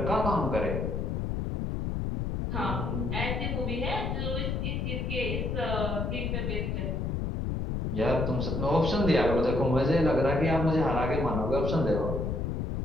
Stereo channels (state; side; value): noise; left; rumble, 1 dB below the sound